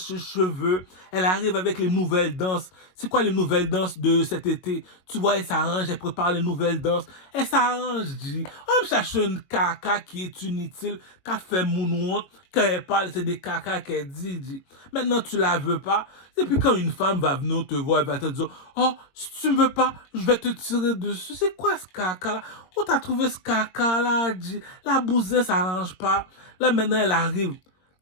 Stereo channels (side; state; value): right; late; 22 ms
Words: cheveux, elle arrive avec les nouvelles danses. C'est quoi les nouvelles danses de cet été? Tu vois, elle s'arrange, elle prépare les nouvelles danses. Elle s'arrange, dit. On me cherche une caca qui est inutile, qui a fait moonwalk, quand elle parle, c'est des caca qu'elle dit. Maintenant, tu la veux pas. Et puis quand une femme va venir te voir, elle va te dire, oh, si tu me veux pas, je vais te tirer dessus. C'est quoi ce caca-là? Où t'as trouvé ce caca-là, dit? La bousin s'arrange pas. Là, maintenant, elle arrive. Tu